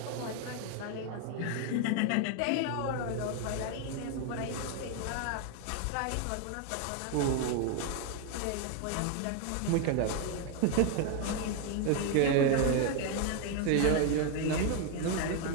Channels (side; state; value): both; different; correlation 0.01